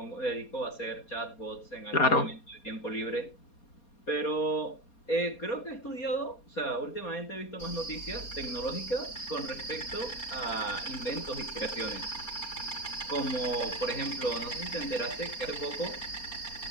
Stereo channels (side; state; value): right; late; 4.2 ms